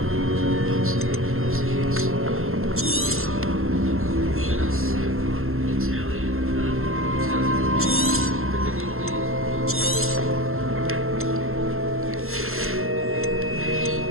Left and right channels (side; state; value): left; late; 0.62 ms